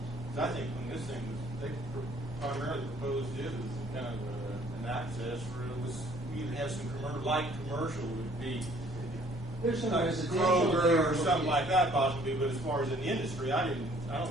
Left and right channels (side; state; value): both; normal; correlation 0.59